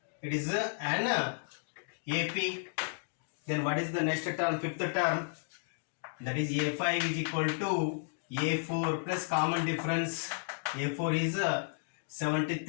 it is an AP. Then what is the next term, fifth term? That is a5 is equal to a4 plus common difference. a4 is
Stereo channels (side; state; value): right; silent; digital silence